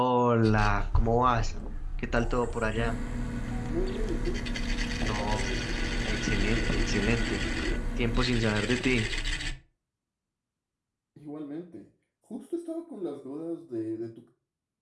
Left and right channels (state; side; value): identical; both; correlation 1.00